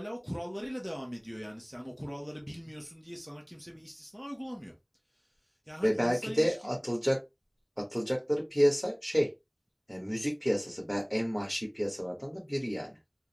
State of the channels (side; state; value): both; identical; correlation 1.00